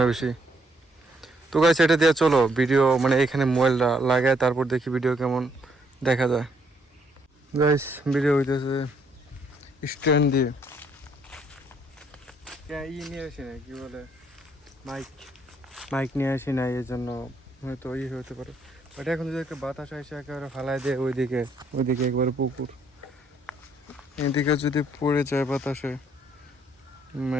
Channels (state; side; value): normal; both; correlation 0.70